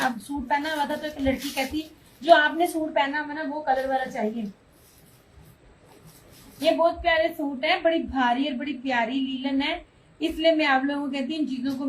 सूट पहना हुआ था, तो एक लड़की कहती जो आपने सूट पहना हुआ ना वो कलर वाला चाहिए। ये बहुत प्यारे सूट है, बड़ी भारी और बड़ी प्यारी लीलन है, इसलिए मैं आप लोगों को कहती हूँ इन चीजों को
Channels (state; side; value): identical; both; correlation 1.00